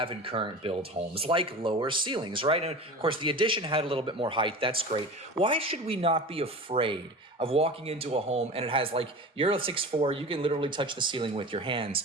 in current build homes, like lower ceilings, right? And of course, the addition had a little bit more height. That's great. Why should we not be afraid of walking into a home and it has you're a 6'4", you can literally touch the ceiling with your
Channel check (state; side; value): normal; both; correlation 0.33